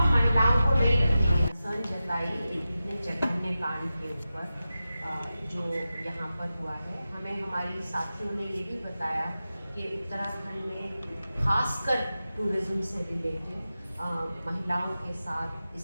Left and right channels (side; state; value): both; inverted; correlation -0.93